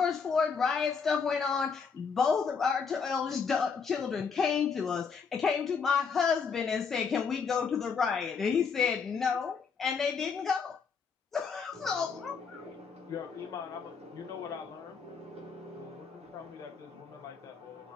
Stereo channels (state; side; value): quieter; right; 5.8 dB